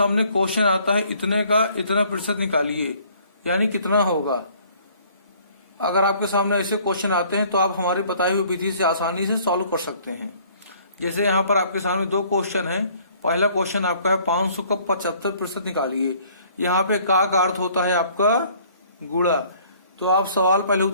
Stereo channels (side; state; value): both; inverted; correlation -0.58